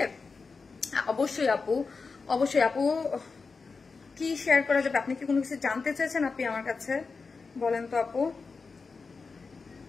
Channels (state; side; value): quieter; right; 4.6 dB